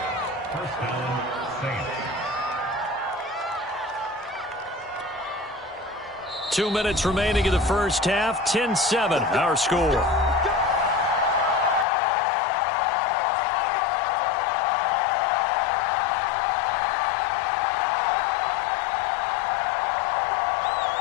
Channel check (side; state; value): right; drops out; at 11.9 s